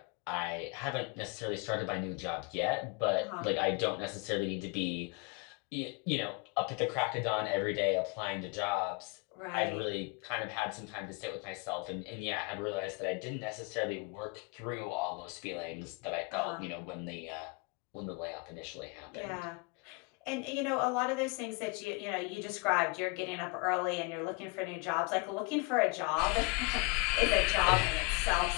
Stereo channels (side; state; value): right; quieter; 29.7 dB